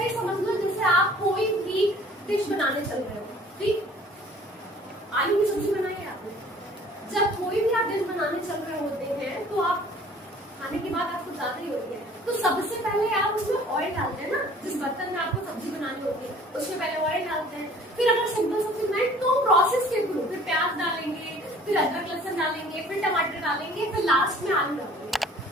समझ लो जैसे आप कोई भी डिश बनाने चल रहे हो। ठीक, आलू की सब्जी बनाई है आपने, जब कोई भी आप डिश बनाने चल रहे होते हैं तो आप खाने की बात आपको ज्यादा ही होती है, तो सबसे पहले आप उसमें ऑयल डालते हैं ना। जिस बर्तन में आपको सब्जी बनानी होती है उसमें पहले ऑयल डालते हैं। फिर अगर सिंपल सब्जी बनाए तो प्रोसेस के थ्रू फिर प्याज डालेंगे, फिर अदरक लहसुन डालेंगे, फिर टमाटर डालेंगे, फिर लास्ट में आलू डालेंगे,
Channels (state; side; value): normal; both; correlation 0.51